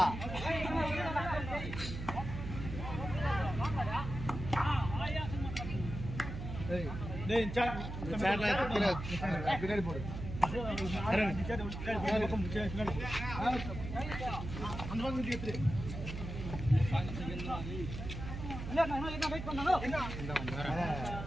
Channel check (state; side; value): noise; right; hum, 7 dB below the sound